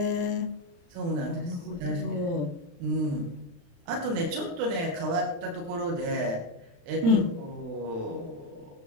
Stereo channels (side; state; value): left; late; 35 ms